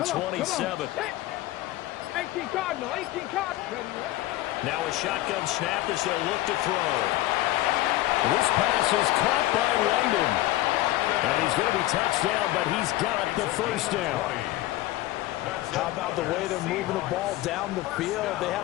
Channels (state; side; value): quieter; right; 16.6 dB